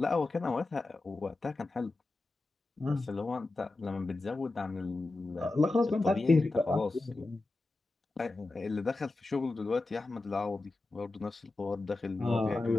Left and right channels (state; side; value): quieter; right; 3.2 dB